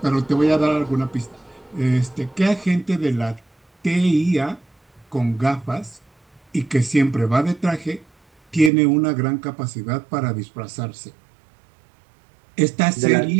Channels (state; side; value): drops out; left; at 8.7 s